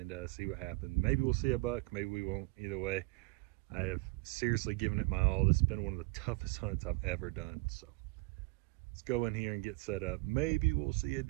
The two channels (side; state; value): left; quieter; 25.1 dB